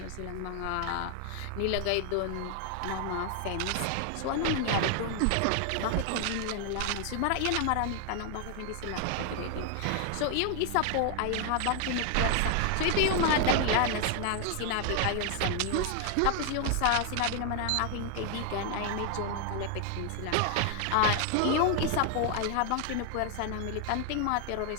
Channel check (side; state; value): both; different; correlation 0.00